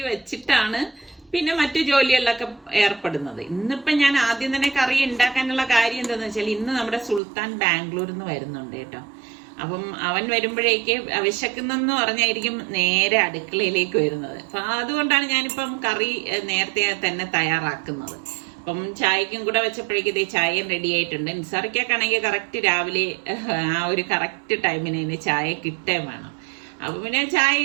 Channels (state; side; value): drops out; left; at 7.2 s